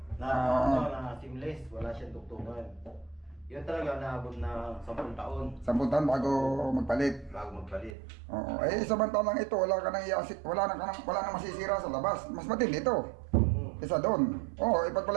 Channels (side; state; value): left; drops out; at 7.9 s